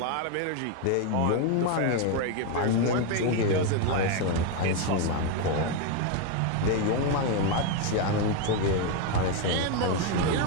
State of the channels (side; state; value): both; different; correlation 0.02